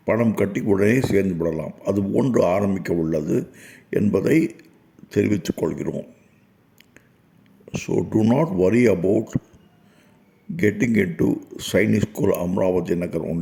பணம் கட்டி உடனே சேர்ந்து விடலாம். அது போன்று ஆரம்பிக்க உள்ளது என்பதை தெரிவித்துக் கொள்கிறோம். So do not worry about getting into Sainik School Amravati Nagar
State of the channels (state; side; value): identical; both; correlation 1.00